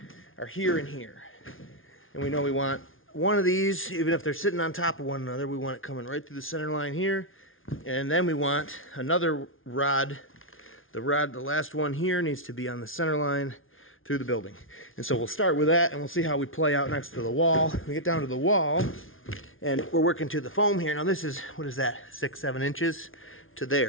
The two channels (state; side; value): late; right; 0.58 ms